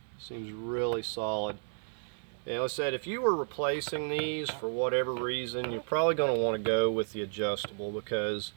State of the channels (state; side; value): silent; left; digital silence